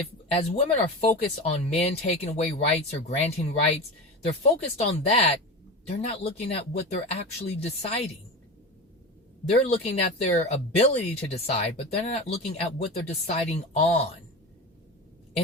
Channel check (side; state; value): both; normal; correlation 0.26